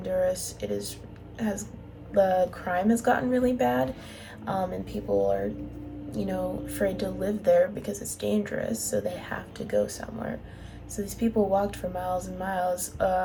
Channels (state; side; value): identical; both; correlation 1.00